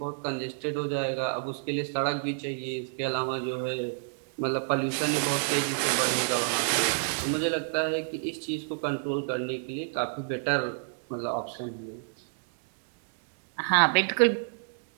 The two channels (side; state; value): left; silent; digital silence